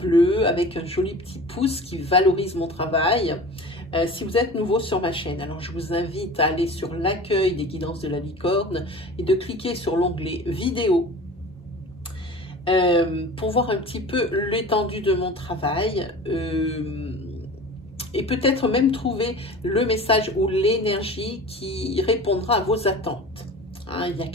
avec un joli petit pouce qui valorise mon travail. Si vous êtes nouveau sur ma chaîne, alors je vous invite à aller sur l'accueil des guidances de la licorne et de cliquer sur l'onglet vidéo pour voir un petit peu l'étendue de mon travail. Et peut-être même trouver le message ou l'énergie qui répondra à vos attentes. Hein, il y a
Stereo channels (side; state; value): both; normal; correlation 0.37